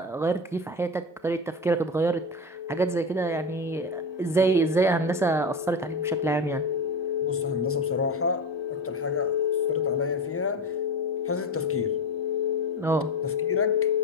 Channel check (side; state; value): both; normal; correlation 0.22